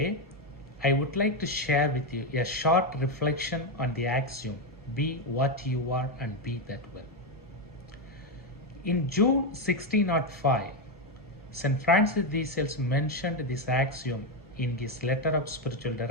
I would like to share with you a short reflection on the axiom, be what you are and be that well. In June 1605, St. Francis de Sales mentioned this axiom in his letter of spiritual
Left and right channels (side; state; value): both; normal; correlation 0.07